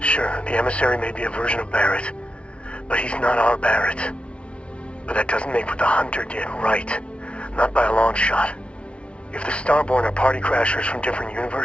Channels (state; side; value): late; right; 0.060 ms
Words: the emissary may be a version of Barrett, but he's not our Barrett. But that doesn't make what the Hunter did right. Not by a long shot. If the Starborn are party crashers from different